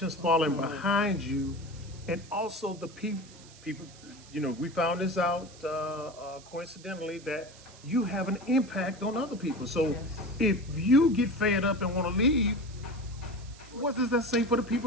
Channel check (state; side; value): noise; right; hiss, 21 dB below the sound